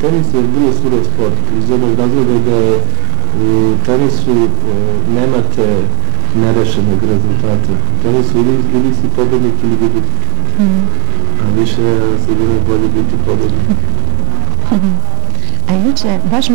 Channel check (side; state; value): left; quieter; 31.0 dB